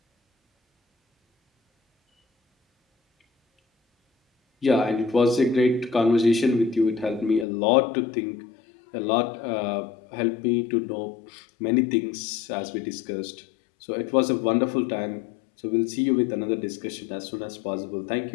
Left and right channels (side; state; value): right; drops out; at 7.5 s